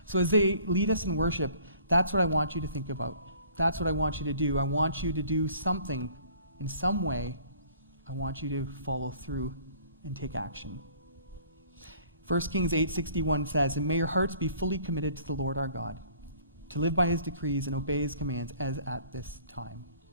So as they lead us in worship, that's what I want you to think about. That's what I want you to do. I want you to do something in some way. I want you to follow through and take action. 1 Kings 8:61 says, "And may your hearts be fully committed to the Lord our God, to live by his decrees and obey his commands as at this time."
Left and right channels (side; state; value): both; inverted; correlation -0.54